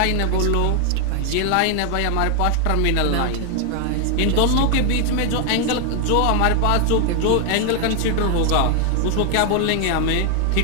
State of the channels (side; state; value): both; different; correlation 0.00